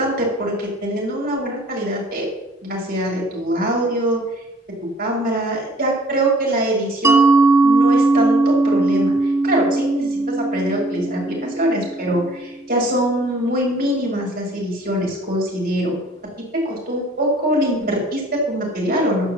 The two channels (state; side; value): normal; both; correlation 0.56